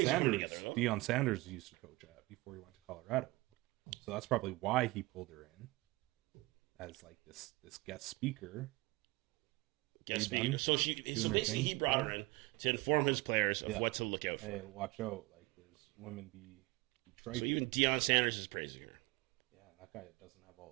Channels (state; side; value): quieter; left; 22.8 dB